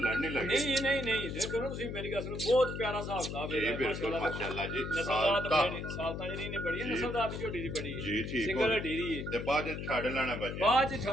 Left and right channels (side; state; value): left; noise; hum, 6 dB below the sound